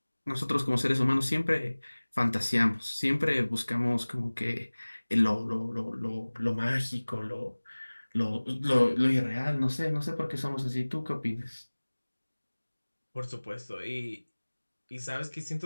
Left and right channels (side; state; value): both; inverted; correlation -1.00